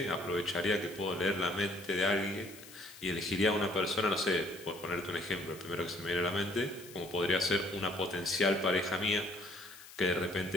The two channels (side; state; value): left; noise; hiss, 18 dB below the sound